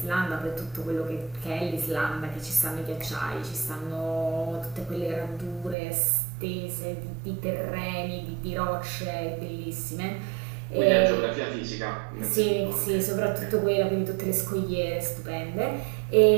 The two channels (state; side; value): drops out; left; at 5.8 s